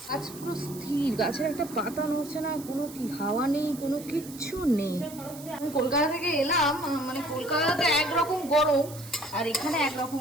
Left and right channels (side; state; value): right; noise; hiss, 16 dB below the sound